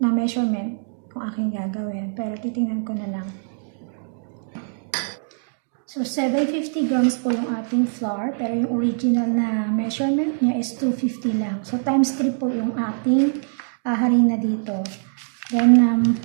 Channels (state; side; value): silent; left; digital silence